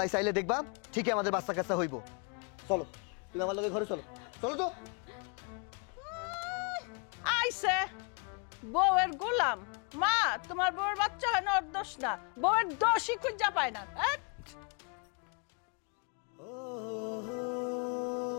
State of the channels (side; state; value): right; quieter; 36.1 dB